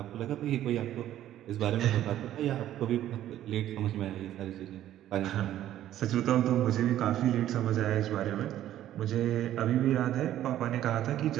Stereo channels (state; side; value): quieter; left; 12.4 dB